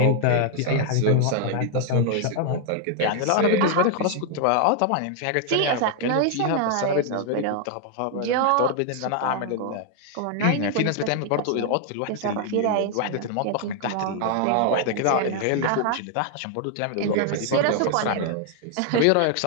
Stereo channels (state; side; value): different; both; correlation 0.00